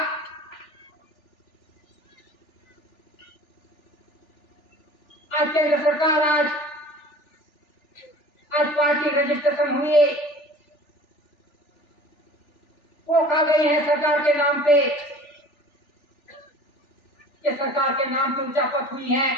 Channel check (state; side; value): late; right; 3.4 ms